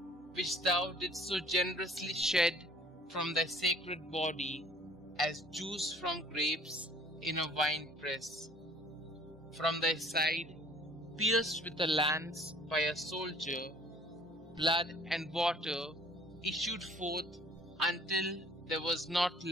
which thou didst so generously shed from thy sacred body as juice from grapes in a wine press. From thy side, pierced with a lance by a soldier, blood and water issued forth until there was not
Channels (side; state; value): both; normal; correlation 0.53